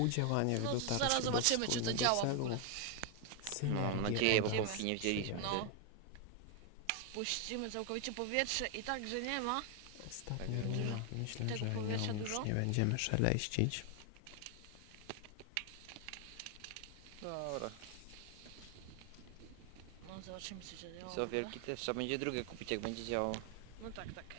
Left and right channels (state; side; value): different; both; correlation 0.00